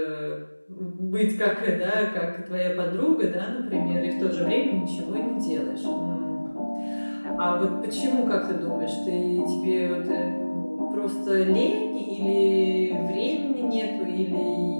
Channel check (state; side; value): inverted; both; correlation -1.00